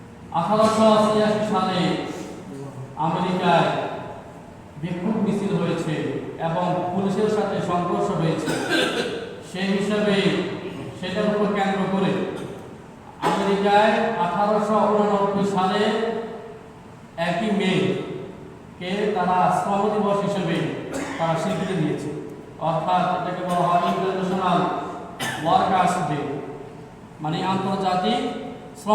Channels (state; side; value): identical; both; correlation 1.00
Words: 1888 সালে আমেরিকায় বিক্ষোভ মিছিল হয়েছে এবং পুলিশের সাথে সংঘর্ষ হয়েছে। সেই হিসাবে সেটার উপর কেন্দ্র করে আমেরিকায় 1889 সালে 1 মে কে তারা শ্রম দিবস হিসেবে তারা স্বীকৃতি দিয়েছে। অর্থাৎ এটাকে বলা হয় ইন্টারন্যাশনাল ওয়ার্কার্স ডে, মানে আন্তর্জাতিক